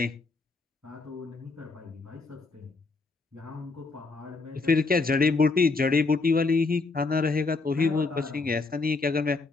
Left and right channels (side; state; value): right; quieter; 3.9 dB